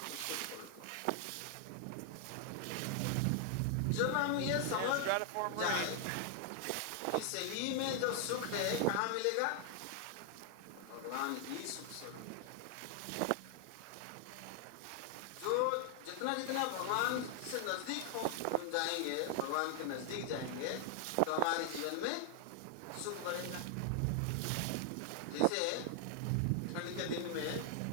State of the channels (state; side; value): different; both; correlation 0.00